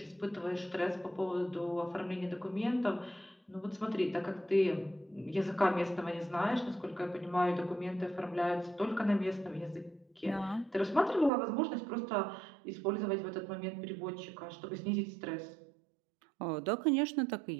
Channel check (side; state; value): left; drops out; at 11.3 s